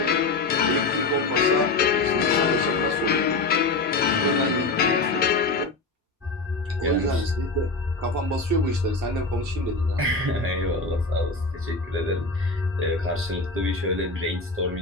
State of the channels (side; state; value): right; quieter; 3.5 dB